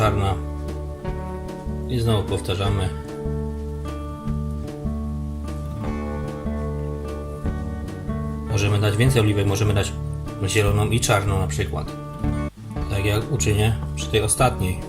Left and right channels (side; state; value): both; identical; correlation 1.00